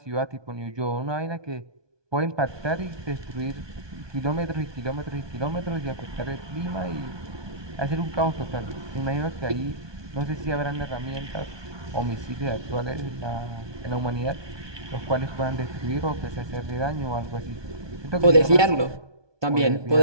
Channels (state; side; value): late; left; 1.2 ms